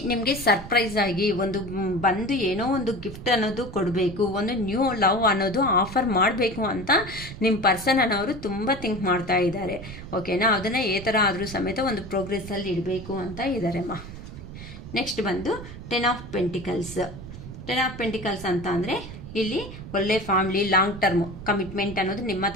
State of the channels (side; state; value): right; noise; rumble, 12 dB below the sound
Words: ನಿಮಗೆ ಸರ್ಪ್ರೈಸ್ ಆಗಿ ಒಂದು ಬಂದು ಏನೋ ಒಂದು ಗಿಫ್ಟ್ ಅನ್ನೋದು ಕೊಡಬೇಕು, ಒಂದು ನ್ಯೂ ಲವ್ ಅನ್ನೋದು ಆಫರ್ ಮಾಡಬೇಕು ಅಂತ ನಿಮ್ಮ ಪರ್ಸನ್ ಅನ್ನೋರು ತುಂಬ ಥಿಂಕ್ ಮಾಡ್ತಾ ಇದ್ದಾರೆ. ಓಕೆನಾ? ಅದನ್ನು ಏ ಥರ ಆದರೂ ಸಮೇತ ಒಂದು ಪ್ರೋಗ್ರೆಸ್ಸಲ್ಲಿ ಇಡಬೇಕು ಅಂತ ಇದ್ದಾರೆಮ್ಮ. ನೆಕ್ಸ್ಟ್ ಬಂದು 10 ಆಫ್ ಪೆಂಟಿಕಲ್ಸ್. 10 ಆಫ್ ಪೆಂಟಿಕಲ್ಸ್ ಅಂತ ಅಂದರೆ ಇಲ್ಲಿ ಒಳ್ಳೆ ಫ್ಯಾಮಿಲಿ ಲಾಂಗ್ ಟರ್ಮ್ ಕಮಿಟ್ಮೆಂಟ್ ಅನ್ನೋದು ನಿಮ್ಮ